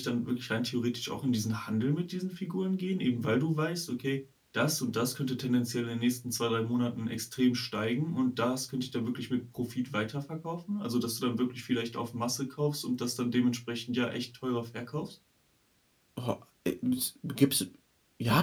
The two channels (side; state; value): both; identical; correlation 1.00